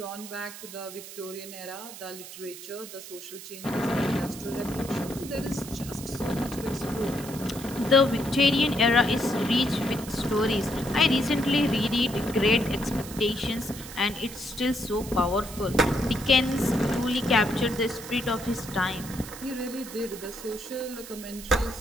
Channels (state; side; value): noise; right; hiss, 13 dB below the sound